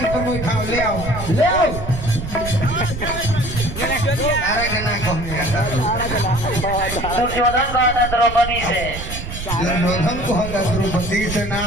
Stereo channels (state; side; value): noise; right; rumble, 8 dB below the sound